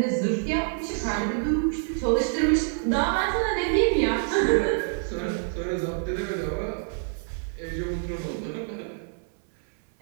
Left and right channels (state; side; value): silent; left; 61 dB below the other